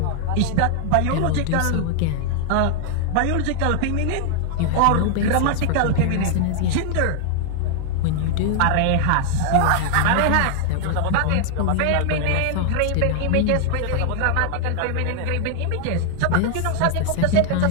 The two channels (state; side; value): different; both; correlation 0.00